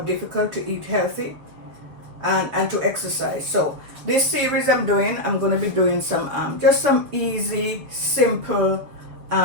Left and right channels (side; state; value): left; late; 7.3 ms